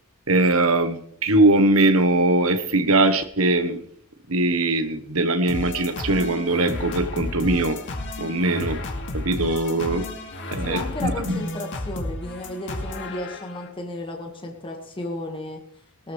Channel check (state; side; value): normal; both; correlation 0.13